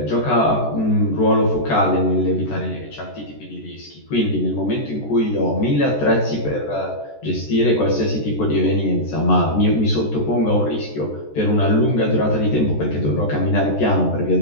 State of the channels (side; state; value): right; late; 14 ms